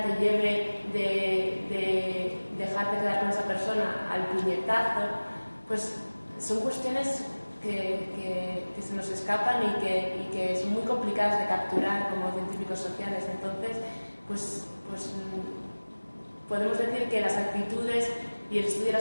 te lleve de dejarte quedar con esa persona al puñetazo, pues son cuestiones que se nos escapan y que son muy complicadas de capturar como científicos sociales. Entonces, pues podemos decir que las actitudes y el estudio de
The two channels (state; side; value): inverted; both; correlation -1.00